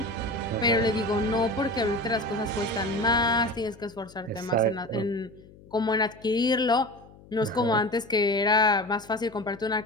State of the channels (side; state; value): left; noise; hum, 23 dB below the sound